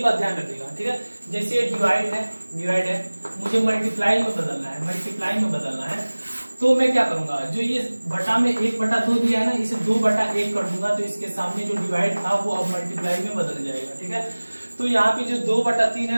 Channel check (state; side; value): inverted; both; correlation -1.00